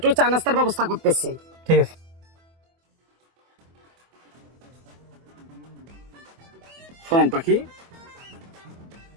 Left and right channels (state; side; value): late; left; 24 ms